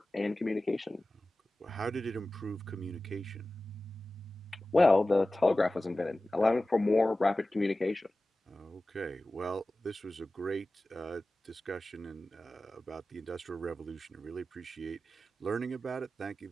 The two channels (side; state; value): both; normal; correlation 0.95